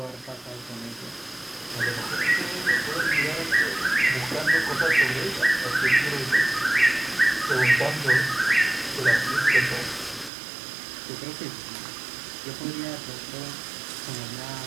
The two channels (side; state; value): left; drops out; at 10.3 s